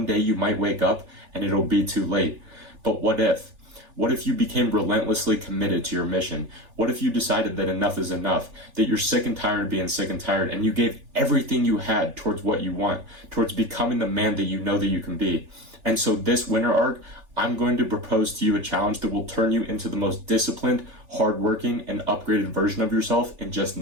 day you might wake up and it'll be too late. But what if? What if you became relentlessly committed to your mission? What if you decided that enough is enough, that you're sick and tired of being sick and tired, and you gave everything you had towards what you want, towards becoming the man that you know that you can be? And so this winter arc, I'm going to propose to you a challenge that will turn you into the most disciplined, hardworking, and upgraded version of yourself in just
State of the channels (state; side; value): late; left; 3.4 ms